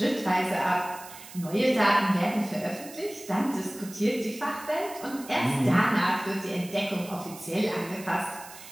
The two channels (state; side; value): noise; right; hiss, 16 dB below the sound